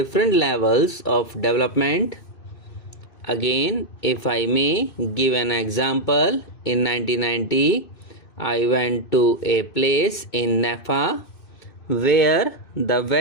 levels of development. Again, if I may give an example, in 1990 I went to a place in Nepal where the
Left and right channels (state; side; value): late; right; 2.6 ms